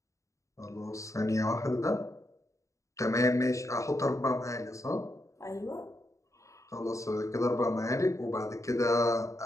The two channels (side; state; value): right; late; 0.15 ms